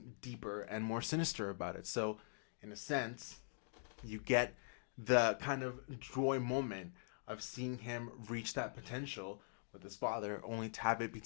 deeper and more sinister about it. So, in a sense, you get the kind of joy moment of seeing him reach that potential with his father, only to have it be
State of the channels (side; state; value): right; silent; digital silence